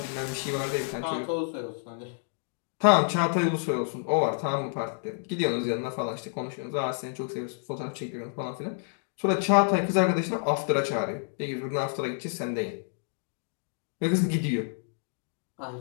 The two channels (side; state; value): right; silent; digital silence